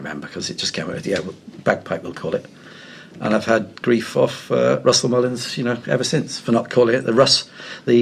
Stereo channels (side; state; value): both; identical; correlation 1.00